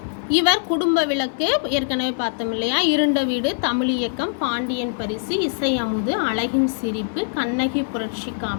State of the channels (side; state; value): right; silent; digital silence